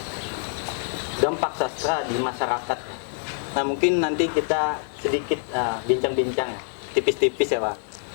dampak sastra di masyarakat. Nah, mungkin nanti kita sedikit bincang-bincang ya, tipis-tipis ya Pak,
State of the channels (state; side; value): silent; right; digital silence